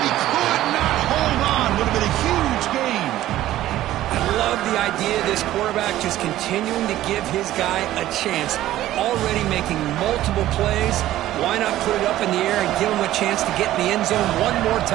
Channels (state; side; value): quieter; left; 14.2 dB